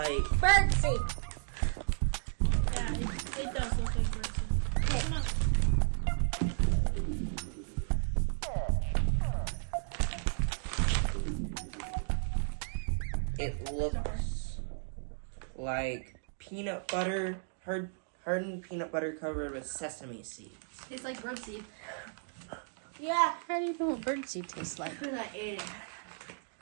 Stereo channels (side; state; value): left; silent; digital silence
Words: Birdseed. Yeah, it does look like birdseed. Come on. it looks like peanut butter, hardened peanut butter covered with sesame seeds. Tastes like birdseed. Yeah. How do you know what birdseed tastes like? Because I ate it.